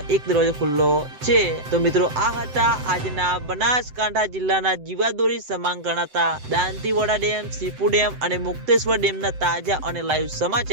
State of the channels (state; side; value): late; left; 7.8 ms